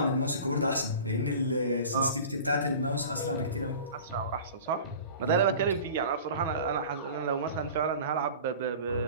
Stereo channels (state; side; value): inverted; both; correlation -0.39